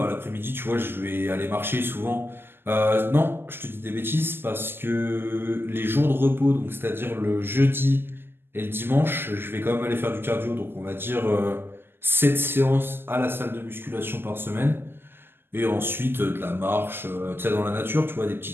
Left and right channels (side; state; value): left; late; 0.10 ms